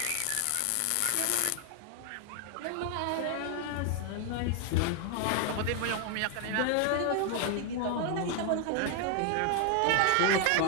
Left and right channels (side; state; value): both; different; correlation 0.00